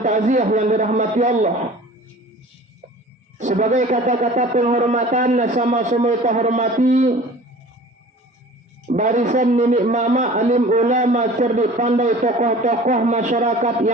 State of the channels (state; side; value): normal; both; correlation 0.44